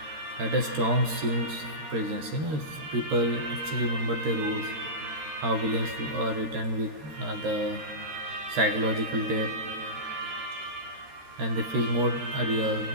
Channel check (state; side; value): late; left; 13 ms